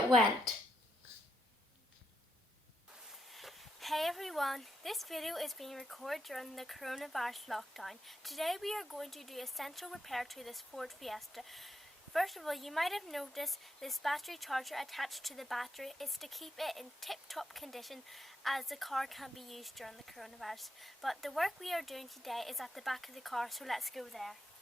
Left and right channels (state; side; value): normal; both; correlation 0.79